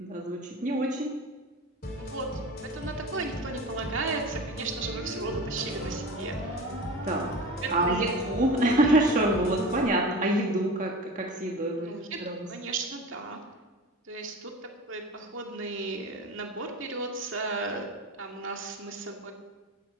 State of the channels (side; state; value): both; normal; correlation 0.33